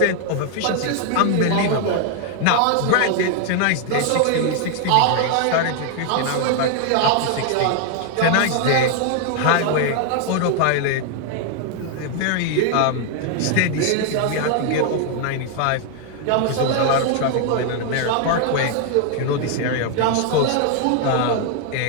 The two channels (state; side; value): different; both; correlation 0.00